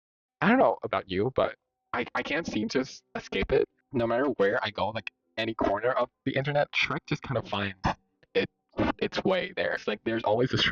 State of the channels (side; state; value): both; identical; correlation 1.00